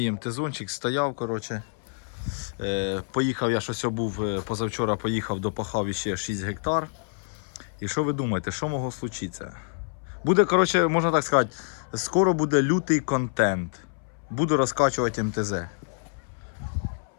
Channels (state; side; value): silent; right; 60 dB below the other